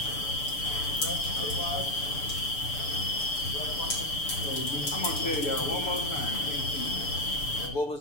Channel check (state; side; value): late; right; 6.9 ms